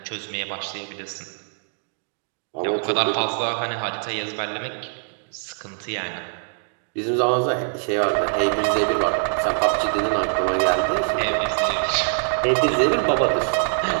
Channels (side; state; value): left; silent; digital silence